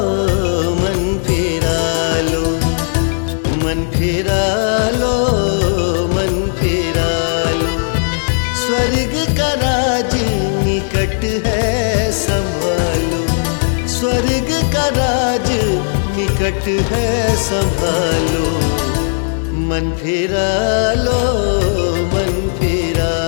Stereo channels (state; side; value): silent; right; 69 dB below the other